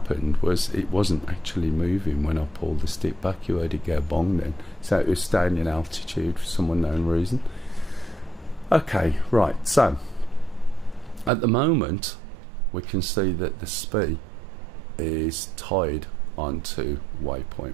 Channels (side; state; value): left; drops out; at 11.3 s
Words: was it wasn't actually moving when I pulled the stick back. You heard it go bong then. So it was staying in altitude for some unknown reason. Okay, right, so At the moment, we can see that the speed is tied onto